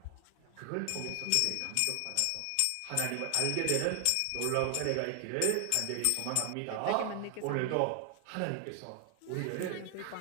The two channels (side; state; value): both; different; correlation 0.00